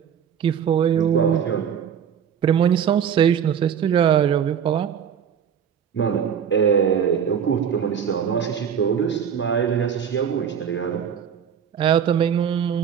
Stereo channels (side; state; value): left; quieter; 8.1 dB